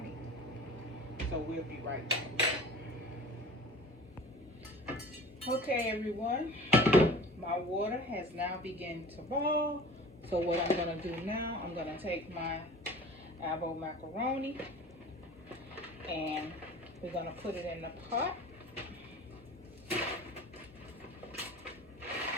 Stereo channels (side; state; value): both; normal; correlation 0.42